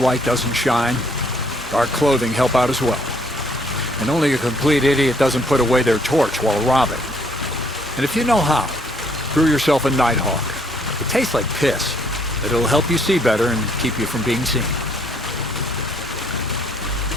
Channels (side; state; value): both; normal; correlation 0.65